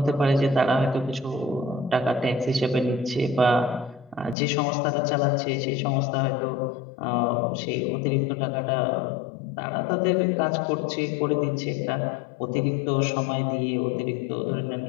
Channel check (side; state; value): right; drops out; at 4.4 s